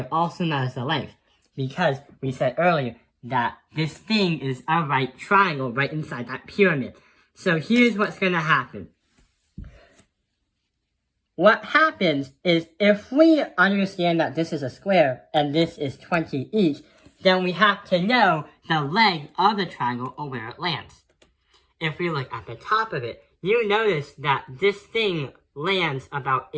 also known as the length, because we said earlier that this thing is a right triangle right inside that pyramid. So here's what's going to happen. What happens is if we understand that this is a square and this is 20 each, then we have to know the leg of the triangle or where it lands. If we look at the top of it, you notice that this thing lands about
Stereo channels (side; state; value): both; identical; correlation 1.00